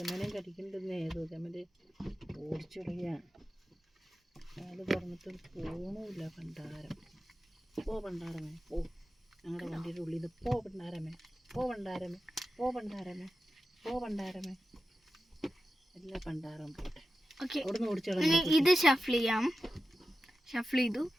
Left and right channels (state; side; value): normal; both; correlation 0.92